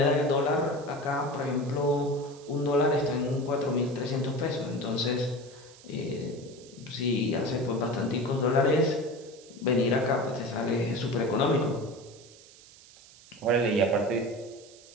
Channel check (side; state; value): right; noise; hiss, 22 dB below the sound